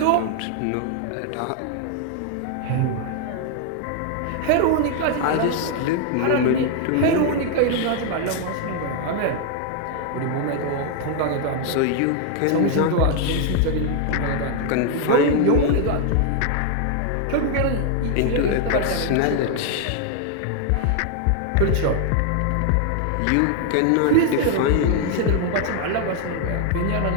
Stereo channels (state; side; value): different; both; correlation 0.00